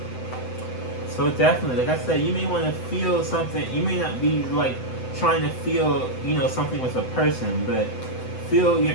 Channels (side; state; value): right; late; 7.9 ms